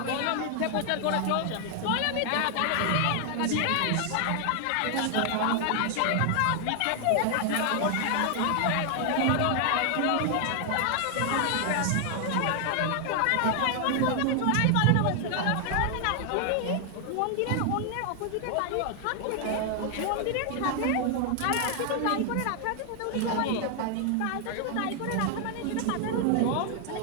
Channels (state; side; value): different; both; correlation 0.00